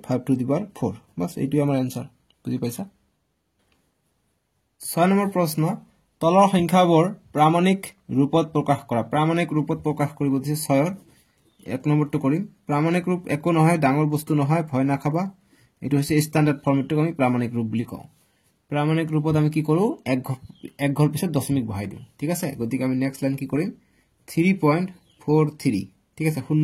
টু দি পাৱাৰ 4 বাস এইটোই আমাৰ आंसर বুজি পাইছা 6 নম্বৰ প্ৰশ্ন তলৰ সংখ্যাবোৰ প্ৰামাণিক ৰূপত প্ৰকাশ কৰা প্ৰামাণিক ৰূপত প্ৰকাশ কৰিব দিছে 6ৰ এক নম্বৰটো কৰিম প্ৰামাণিক ৰূপ একো নহয় ডাঙৰ বস্তু নহয় ভয় নাখাবা এটো হৈছে স্ট্যান্ডাৰ্ড ফৰ্মেটটো আমি প্ৰামাণিক ৰূপ বুলি কওঁ প্ৰামাণিক ৰূপত আমি কি কৰো এক ঘৰ পিছত দশমিক বহাই দিওঁ ঠিক আছে গতিকে আমি নেক্সট লাইন কি কৰিম 3.43 ঠিক আছে শূন্য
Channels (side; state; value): both; identical; correlation 1.00